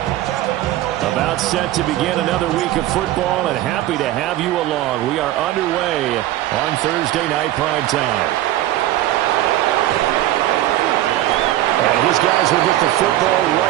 About set to begin another week of football, and happy to have you along. We are underway on Thursday night primetime. And his guys will get the football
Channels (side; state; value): left; quieter; 14.4 dB